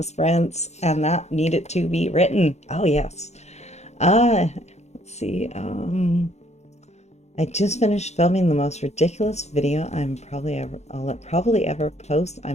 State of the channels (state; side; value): late; right; 0.32 ms